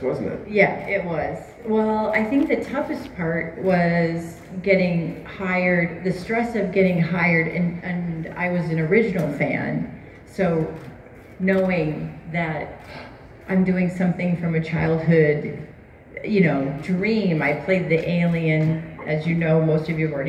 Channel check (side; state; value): both; identical; correlation 1.00